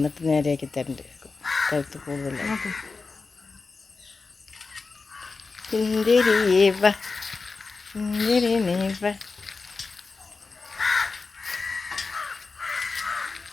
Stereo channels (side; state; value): right; quieter; 4.2 dB